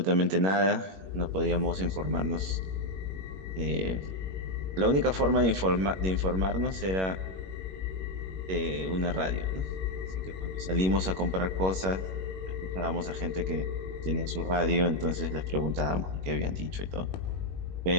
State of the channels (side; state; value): left; late; 21 ms